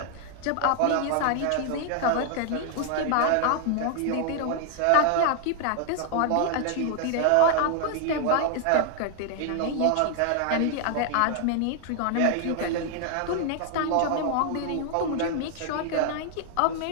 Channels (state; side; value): different; both; correlation 0.00